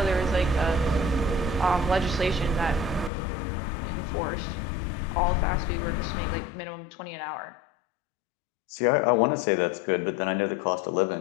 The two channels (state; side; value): drops out; right; at 3.1 s